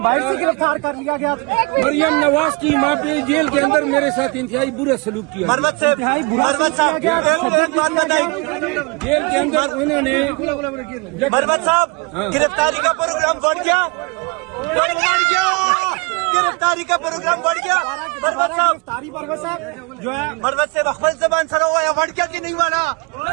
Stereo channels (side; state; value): left; quieter; 30.1 dB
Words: سے گرفتار کر لیا گیا؟ مریم نواز کی ماں پہ جیل کے اندر میرے ساتھ انتہائی برا سلوک کیا. انتہائی برا کیا گیا، تشدد کیا گیا. جیل کے اندر انہوں نے مربت صاحب گرفتاری کا پروگرام بڑھ گیا، گرفتاری کا پروگرام بڑھ گیا. گرفتاری مربت صاحب جو ہے مربت سے رخبت زبان سرا ہوا ہے، بڑھ گیا کہ نہیں مانا؟